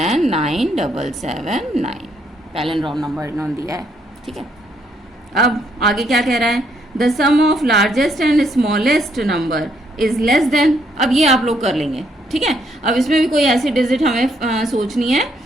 9779, palindrome number इन्होंने दिया है, ठीक है। अब आगे क्या कह रहा है, the sum of largest and smallest number is less than. अब ये आप लोग कर लेंगे, ठीक है। अब इसमें भी कोई ऐसी डिजिट हमें सोचनी है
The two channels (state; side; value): normal; both; correlation 0.72